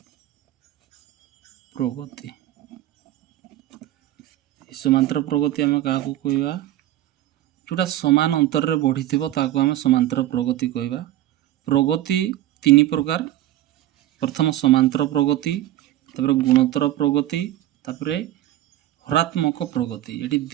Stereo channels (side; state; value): left; quieter; 13.9 dB